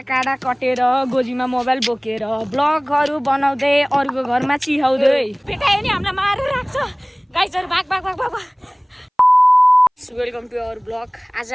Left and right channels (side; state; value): both; identical; correlation 1.00